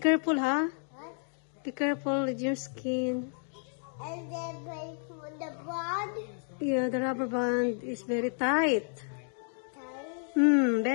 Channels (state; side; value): silent; right; 56 dB below the other